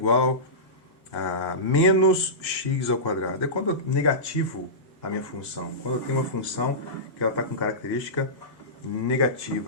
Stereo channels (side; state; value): both; normal; correlation -0.19